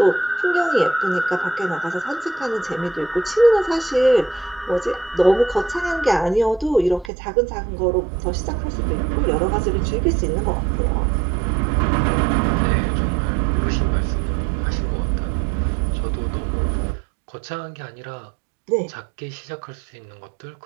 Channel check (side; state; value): left; drops out; at 7.1 s